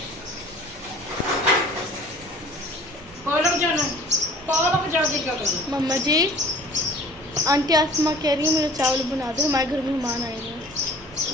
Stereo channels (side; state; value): right; noise; rumble, 22 dB below the sound